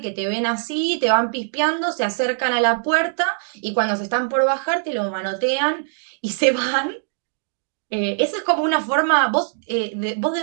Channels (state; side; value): silent; left; digital silence